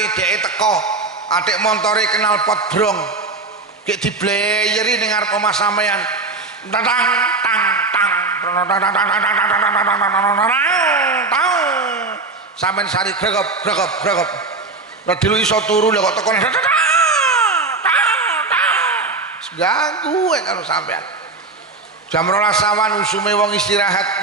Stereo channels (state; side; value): quieter; left; 3.7 dB